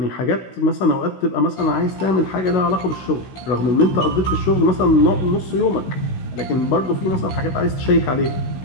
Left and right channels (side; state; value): right; late; 16 ms